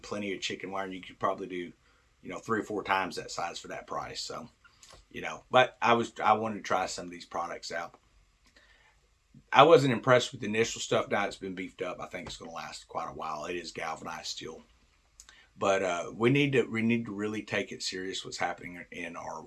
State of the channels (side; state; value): both; identical; correlation 1.00